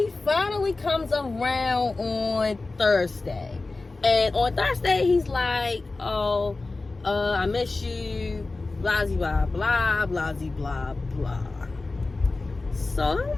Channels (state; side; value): quieter; right; 3.4 dB